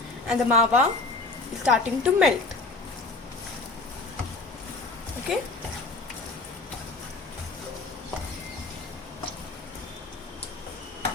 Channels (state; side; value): quieter; right; 3.5 dB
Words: and the mava is starting to melt. Okay.